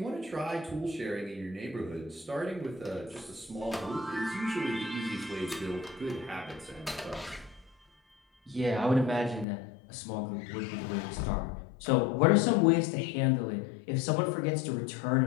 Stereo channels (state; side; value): drops out; right; at 9.5 s